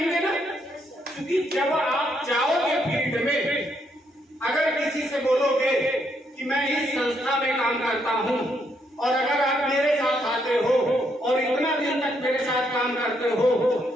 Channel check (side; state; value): both; normal; correlation 0.75